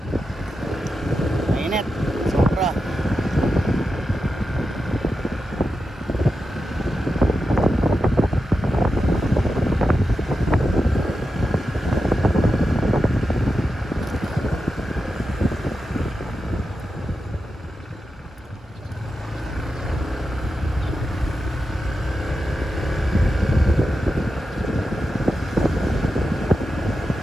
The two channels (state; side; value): normal; both; correlation 0.90